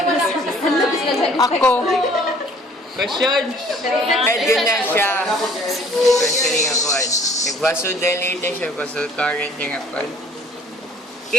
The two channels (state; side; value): normal; both; correlation 0.55